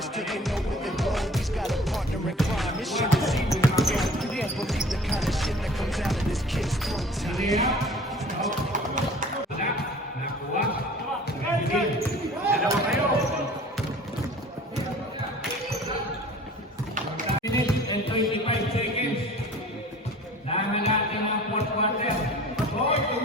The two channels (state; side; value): normal; both; correlation 0.46